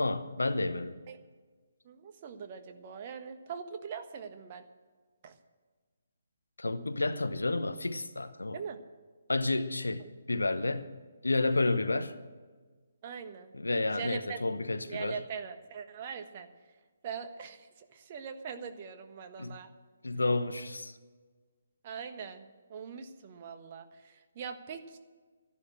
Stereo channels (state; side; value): inverted; both; correlation -0.91